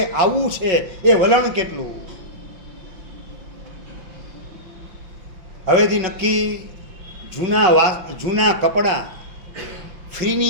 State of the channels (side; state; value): left; late; 5.8 ms